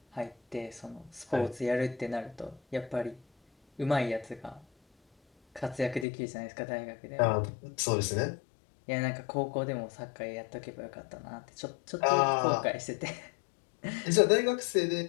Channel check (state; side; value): drops out; right; at 6.1 s